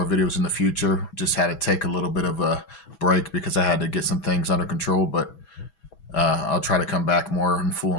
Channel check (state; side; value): late; right; 6.1 ms